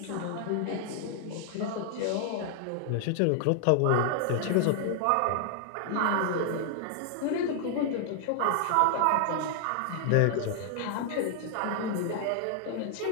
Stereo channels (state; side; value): different; both; correlation 0.00